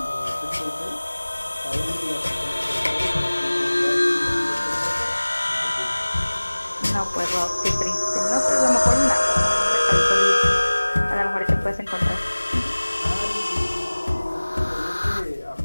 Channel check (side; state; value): both; inverted; correlation -1.00